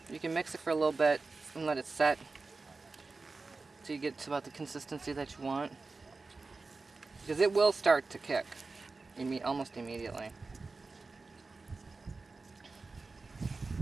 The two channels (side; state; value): left; quieter; 3.9 dB